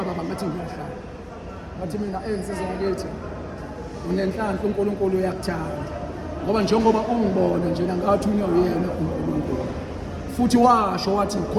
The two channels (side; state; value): both; identical; correlation 1.00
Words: baba ngathi ngiyahlala ngathi mina ensizwa ngakithi unenhlanhla uNkulunkulu uyakuthanda ngoba njengoba ungibona nje ngathi uyena uNkulunkulu futhi washo wathi